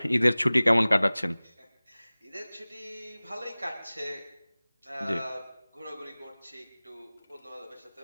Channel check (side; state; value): both; inverted; correlation -0.99